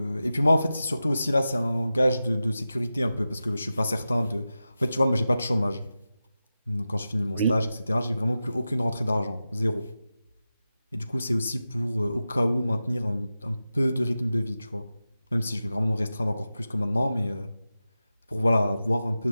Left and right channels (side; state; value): both; inverted; correlation -0.93